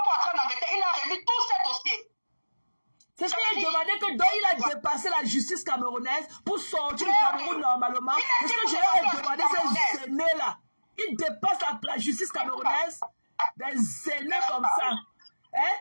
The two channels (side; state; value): both; inverted; correlation -1.00